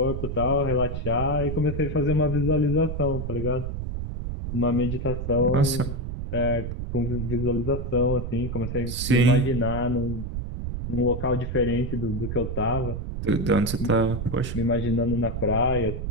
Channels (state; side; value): noise; right; rumble, 4 dB below the sound